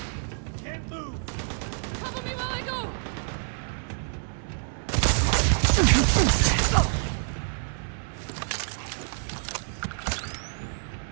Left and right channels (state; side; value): silent; left; 60 dB below the other